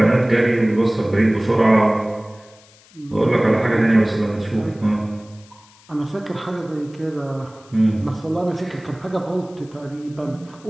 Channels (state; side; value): noise; left; hiss, 27 dB below the sound